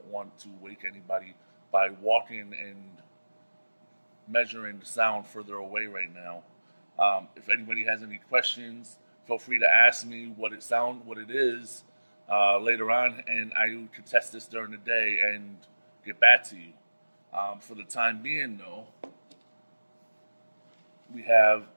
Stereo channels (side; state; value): both; inverted; correlation -1.00